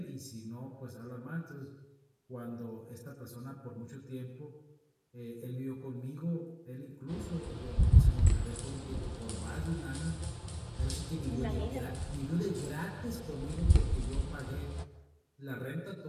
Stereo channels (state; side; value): identical; both; correlation 1.00